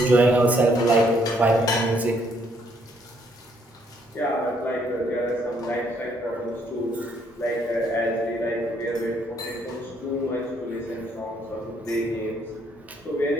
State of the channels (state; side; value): normal; both; correlation 0.69